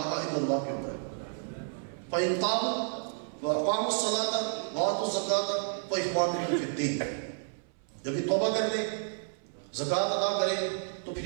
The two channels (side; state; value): left; silent; 57 dB below the other